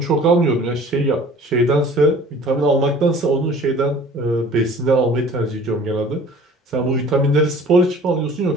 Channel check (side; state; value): both; normal; correlation 0.48